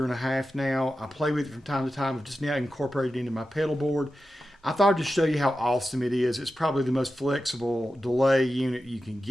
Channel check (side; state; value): both; normal; correlation 0.92